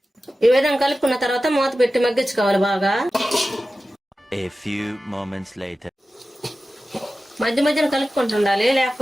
ఈ విధంగా కలుపుకున్న తర్వాత మూత పెట్టి మగ్గించుకోవాలి బాగా. A few moments later. మధ్య మధ్యన కలుపుకుంటూ ఉండాలి,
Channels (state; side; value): normal; both; correlation 0.94